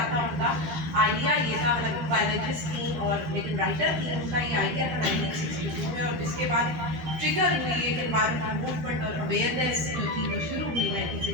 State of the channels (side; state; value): left; late; 12 ms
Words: تھا ان کا؟ آئیڈیا یہ تھا، حالانکہ وہ بایولوجسٹ تھیں اور لیکن رائٹر تھیں. ان کا یہ آئیڈیا تھا 1962 میں، اور جس کے بعد ٹریگر ہوئی ایک انوائرمنٹل موومنٹ اور اویئرنیس جو تھی وہ شروع ہوئی